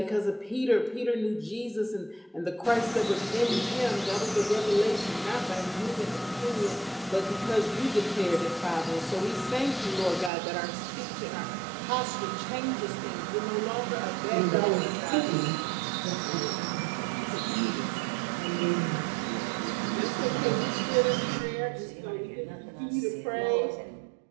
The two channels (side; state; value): left; drops out; at 10.3 s